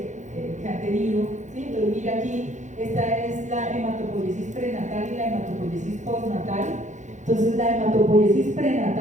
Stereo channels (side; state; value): left; late; 0.35 ms